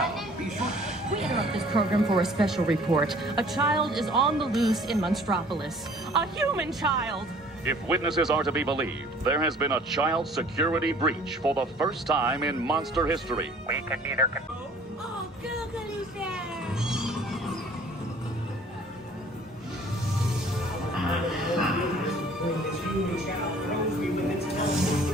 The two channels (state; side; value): normal; both; correlation 0.53